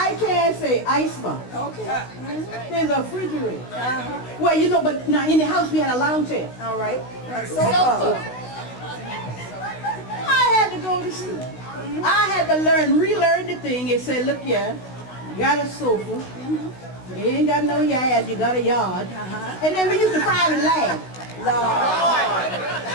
can't say icebox. Okay. There's a refrigerator. Well, you know, but now in the house we had a lounge chair. All right. Sofa. I had to go to school. I had to relearn the thing and say, look here, you got a sofa. You ain't got no yard, you got a yard. And then we used to private laugh.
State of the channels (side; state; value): right; late; 16 ms